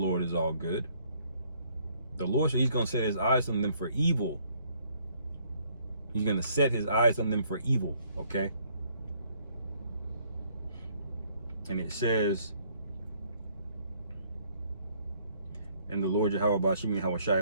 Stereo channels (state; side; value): inverted; both; correlation -0.65